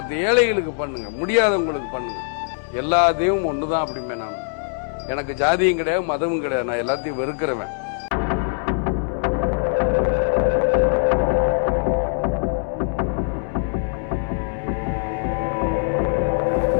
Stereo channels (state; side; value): silent; right; 64 dB below the other